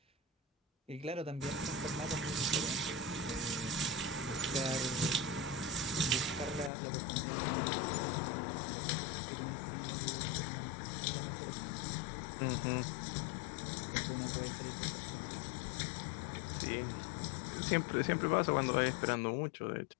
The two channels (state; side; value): drops out; right; at 6.7 s